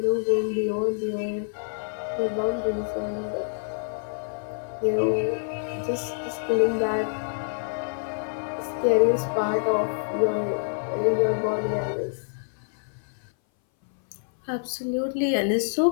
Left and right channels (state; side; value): silent; right; 59 dB below the other